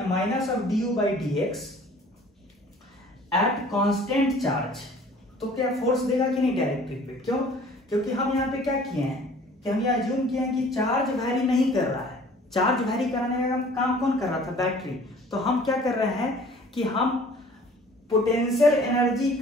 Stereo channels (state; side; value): normal; both; correlation 0.51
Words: due by dx at constant charge, तो क्या फोर्स देगा कि नहीं डाइलेक्ट्रिक पे? क्यों? क्योंकि हम यहाँ पे क्या किए हैं कि हम ये अज्यूम किए हैं कि चार्ज वैरी नहीं कर रहा है, चार्ज वैरी कराने का काम कौन कर रहा था, बैटरी। तो हम क्या कर रहे हैं कि हम पोटेंशियल एनर्जी